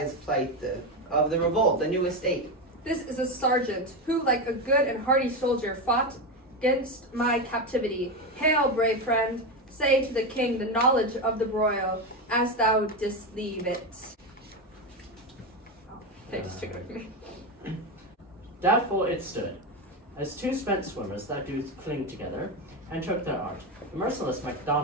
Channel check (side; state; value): both; normal; correlation 0.14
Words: plight of the revolt, the new estate. This is a sergeant who, like a good and hardy soldier, fought against my captivity. Hail, brave friend, say to the king the knowledge of the broil, as thou didst leave it. Oh, they just took it away from me. Doubtful it stood, as two spent swimmers that do cling together, and took their art. The merciless